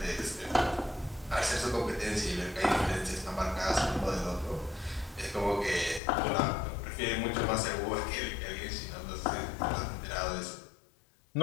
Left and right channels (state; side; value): drops out; right; at 6.0 s